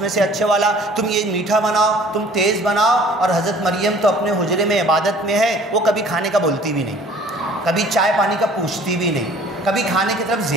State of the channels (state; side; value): normal; both; correlation 0.51